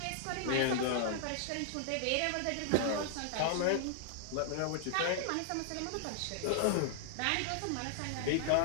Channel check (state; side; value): different; both; correlation -0.01